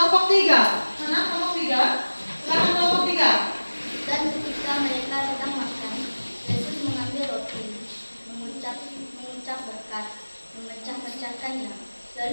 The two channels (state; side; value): inverted; both; correlation -1.00